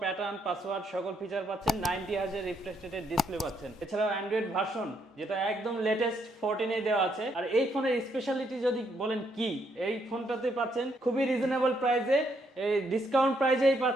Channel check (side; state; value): both; normal; correlation 0.74